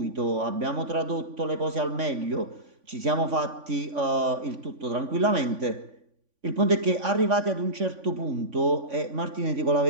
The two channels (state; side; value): late; left; 3.5 ms